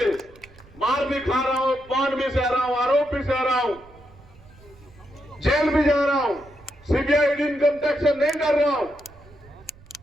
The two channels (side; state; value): right; noise; rumble, 24 dB below the sound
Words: मार भी खा रहा हूं, पान भी सह रहा हूं, आरोप भी सह रहा हूं, जेल भी जा रहा हूं, सीबीआई इनकम टैक्स से नहीं डर रहा हूं,